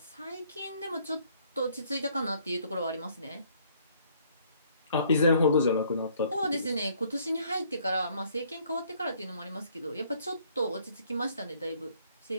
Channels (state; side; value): inverted; both; correlation -0.64